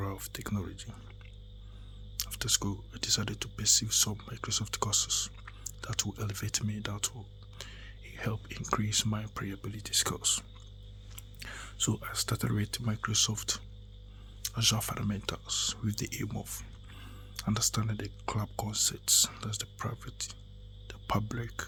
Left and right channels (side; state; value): both; identical; correlation 1.00